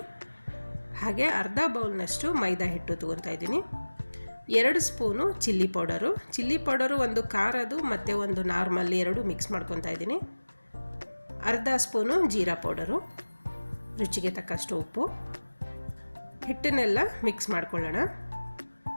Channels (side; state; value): both; inverted; correlation -1.00